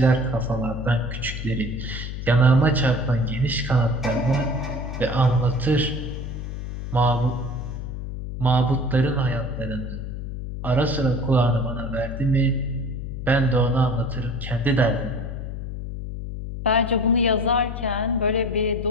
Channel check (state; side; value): noise; left; hum, 7 dB below the sound